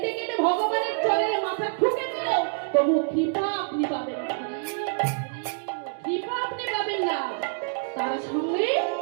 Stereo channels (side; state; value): left; silent; digital silence